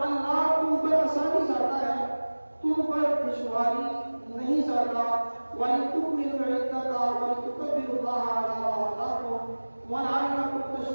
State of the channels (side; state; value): both; inverted; correlation -1.00